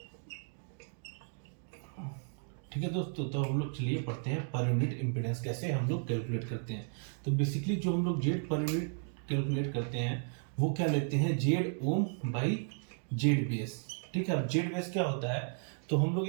ठीक है दोस्तों, तो हम लोग चलिए पढ़ते हैं पर यूनिट इम्पीडेंस कैसे हम लोग कैलकुलेट करते हैं। तो बेसिकली जो हम लोग जेड पर यूनिट कैलकुलेट करते हैं वो क्या लेते हैं, Z ohm by Z base. ठीक है, अब जेड बेस क्या होता है, तो हम लोग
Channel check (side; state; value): left; silent; 55 dB below the other